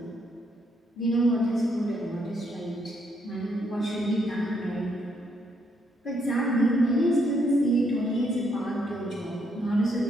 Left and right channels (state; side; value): normal; both; correlation 0.73